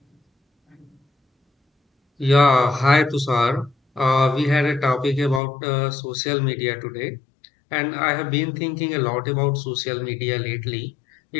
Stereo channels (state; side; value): drops out; right; at 5.4 s